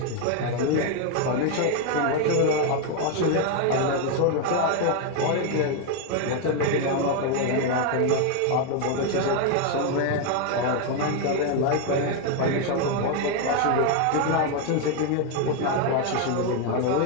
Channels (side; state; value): both; different; correlation 0.01